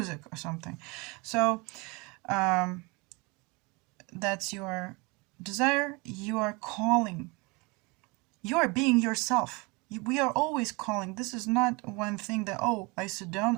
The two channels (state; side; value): quieter; left; 26.9 dB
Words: or something. So that's your desire. You are calling. You are being yourself. We are always calling. This is not one thing that, I sit down,